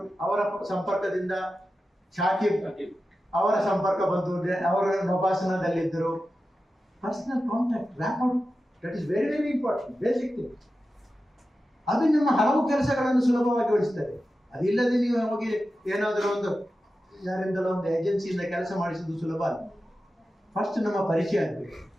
ಅವರ ಸಂಪರ್ಕದಿಂದ, ಶಾಕಿಬ್ ಅವರ ಸಂಪರ್ಕ ಬಂದು ಅವರು ನಭಾಸನದಲ್ಲಿದ್ದರು. Personal contact, rapport, that is very very important, basic thing. ಅದು ನಿಮ್ಮ ಹಲವು ಕೆಲಸಗಳನ್ನು ಸುಲಭವಾಗಿ ಗೊಳಿಸ್ತದೆ. ಅದಿಲ್ಲದೆ ನೀವು ಹೋಗಿ ಏನಾದರೂ ಒಂದು ಯಾರಿಂದಲೋ ಒಂದು ಏಜೆನ್ಸಿಯಿಂದ ಕೆಲಸ ಮಾಡಿಸುವುದು ಸುಲಭ ಅಲ್ಲ. ಫಸ್ಟ್ ನಮ್ಮ ಪರಿಚಯ ಆಗಬೇಕು.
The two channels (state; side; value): normal; both; correlation 0.92